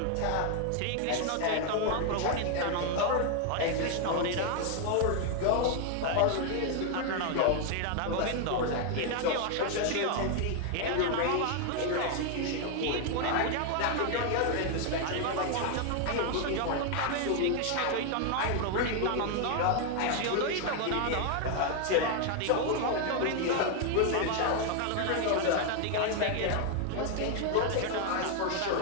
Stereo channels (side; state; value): both; different; correlation 0.00